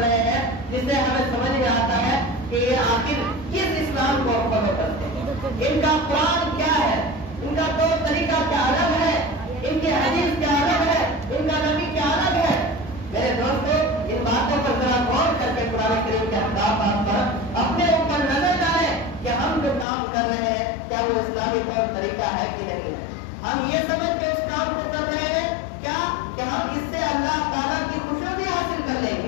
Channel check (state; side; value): drops out; right; at 19.9 s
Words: رہے ہیں جس سے ہمیں سمجھ میں آتا ہے کہ یہ آخر کس اسلام کو فالو کرتے ہیں، ان کا قرآن کیا ہے، ان کا طور طریقہ کیا الگ ہے، ان ہم جو کام کر رہے ہیں کیا وہ اسلامی طور طریقہ ہے کہ نہیں ہے؟ ہم یہ سمجھ کے اس کام کو کر رہے ہیں کیا کہ ہم اس سے اللہ تعالیٰ کی خوشنودی حاصل کر لیں